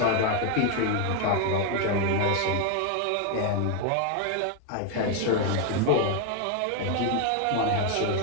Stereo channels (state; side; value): different; both; correlation 0.01